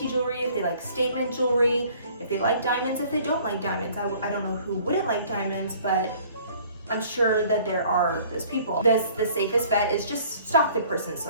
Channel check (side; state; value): both; inverted; correlation -0.54